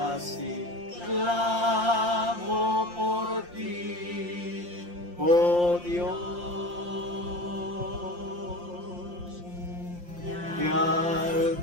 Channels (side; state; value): left; late; 5.7 ms